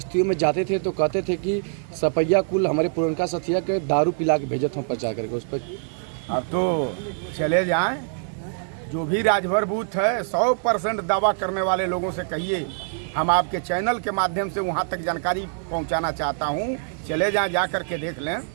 में जाते थे तो कहते थे कि सपैया कुल हमारे पुरनका सथिया के दारू पिला के भेजत हम प्रचार करके उस पर। अब तो चले जाएं, जो भी राजभर बूथ है 100% दावा करने वाले लोगों से कहिए, हम आपके चैनल के माध्यम से वहां तक जानकारी पहुंचाना चाहता हूं। चले जाएं, जा कर के देख लें।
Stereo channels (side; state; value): left; silent; 62 dB below the other